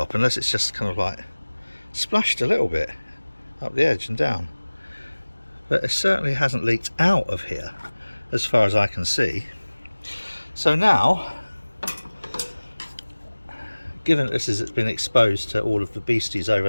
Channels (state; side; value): inverted; both; correlation -1.00